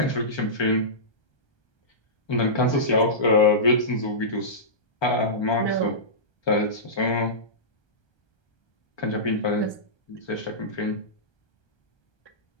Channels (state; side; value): late; right; 1.3 ms